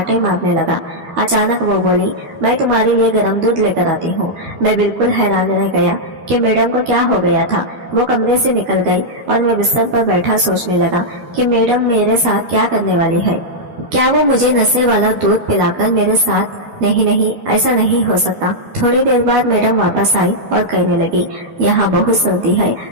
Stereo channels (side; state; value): left; late; 12 ms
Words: मारने लगा। अचानक वो बोली, मैं तुम्हारे लिए गर्म दूध लेकर आती हूँ। मैं बिल्कुल हैरान रह गया कि मैडम को क्या हो गया था। वो कमरे से निकल गई और मैं बिस्तर पर बैठा सोचने लगा कि मैडम मेरे साथ क्या करने वाली है। क्या वो मुझे नशे वाला दूध पिलाकर मेरे साथ? नहीं, ऐसा नहीं हो सकता। थोड़ी देर बाद मैडम वापस आई और कहने लगी, यहाँ बहुत सर्दी है,